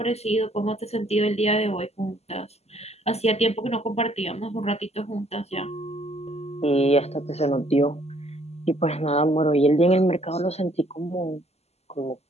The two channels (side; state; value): right; late; 0.30 ms